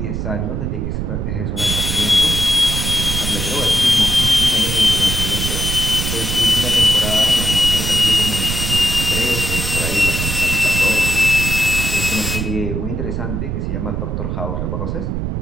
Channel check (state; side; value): noise; right; rumble, 2 dB below the sound